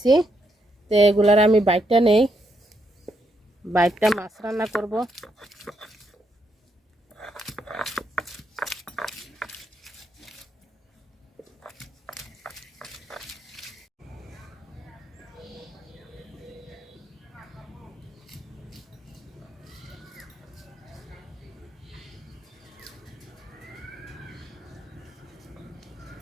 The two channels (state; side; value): normal; both; correlation 0.78